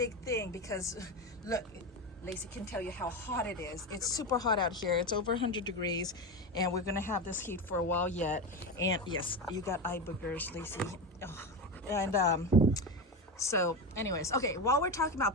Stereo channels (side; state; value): both; normal; correlation 0.18